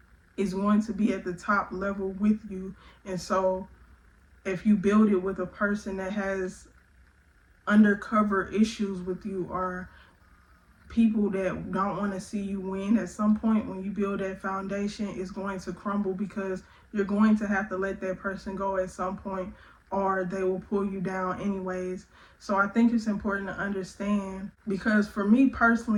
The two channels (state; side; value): identical; both; correlation 1.00